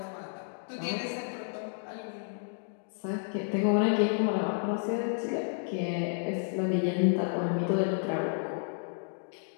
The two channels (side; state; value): right; silent; digital silence